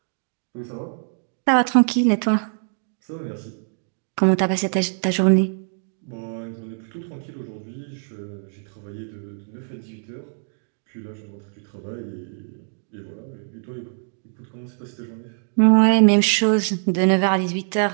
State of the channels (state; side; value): silent; left; digital silence